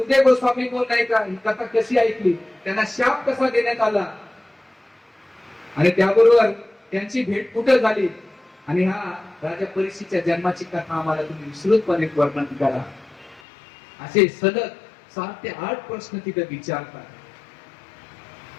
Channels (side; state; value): right; drops out; at 13.4 s